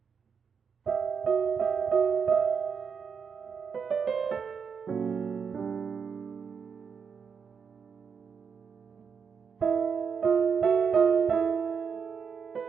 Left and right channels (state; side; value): quieter; left; 6.3 dB